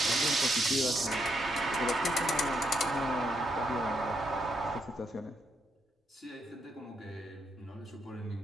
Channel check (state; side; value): normal; both; correlation 0.78